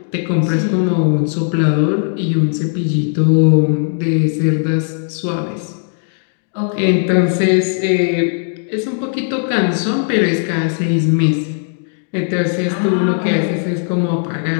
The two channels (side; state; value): right; silent; digital silence